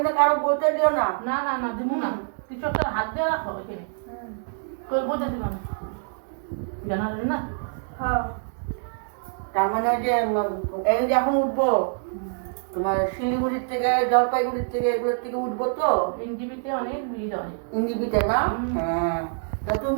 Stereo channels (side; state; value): left; silent; digital silence